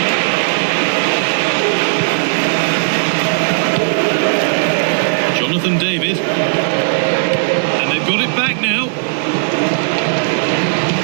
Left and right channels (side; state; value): left; silent; digital silence